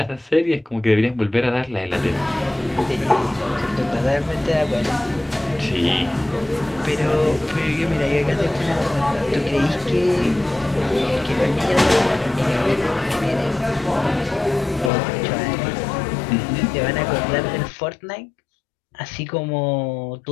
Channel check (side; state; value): right; drops out; at 14.9 s